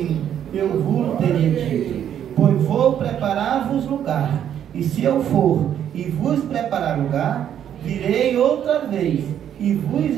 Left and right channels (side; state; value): left; quieter; 9.8 dB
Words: eu vos teria dito, pois vou preparar-vos lugar. E se eu for e vos preparar lugar, virei outra vez e vos